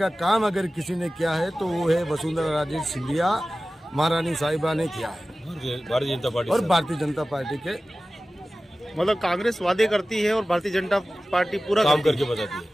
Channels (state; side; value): normal; both; correlation 0.96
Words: काम अगर किसी ने किया है तो वो है वसुंधरा राजे सिंधिया महारानी साहिबा ने किया है। भारतीय जनता पार्टी और भारतीय जनता पार्टी के मतलब कांग्रेस वादे करती है और भारतीय जनता पार्टी पूरा काम करके बताती